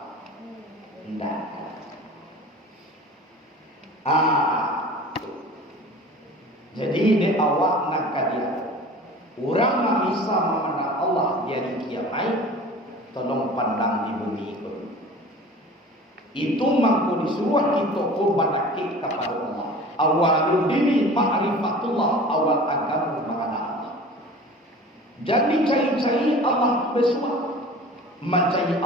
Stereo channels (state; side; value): normal; both; correlation 0.41